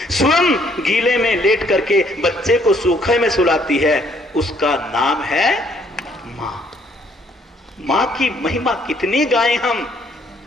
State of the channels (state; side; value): normal; both; correlation 0.66